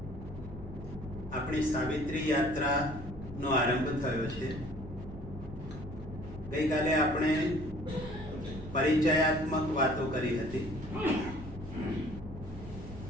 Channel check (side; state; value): right; noise; hum, 15 dB below the sound